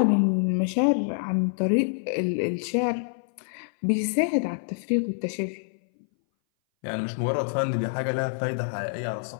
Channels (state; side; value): silent; right; 59 dB below the other